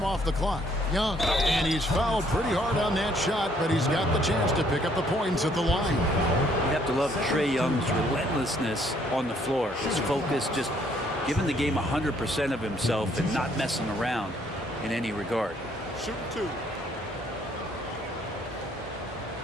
off the clock. Young, and he's fouled pretty hard on that shot, but he's got the chance to pick up the points at the line. You have to love Trae Young's relentlessness on the floor. His focus, just giving the game 100% of himself and not messing around in any regard. Shoot 2.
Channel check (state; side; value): normal; both; correlation 0.66